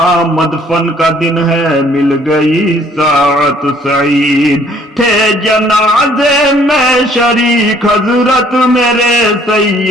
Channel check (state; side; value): normal; both; correlation 0.60